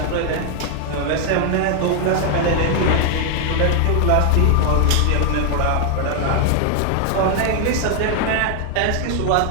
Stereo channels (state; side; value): different; both; correlation 0.00